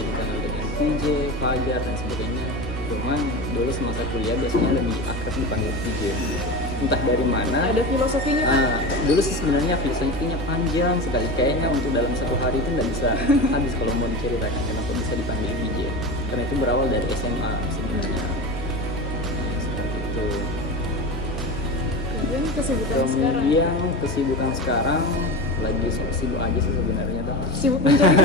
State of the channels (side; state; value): both; normal; correlation 0.26